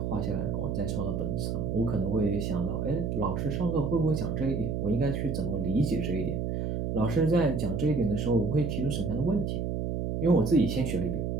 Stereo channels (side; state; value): right; noise; hum, 1 dB below the sound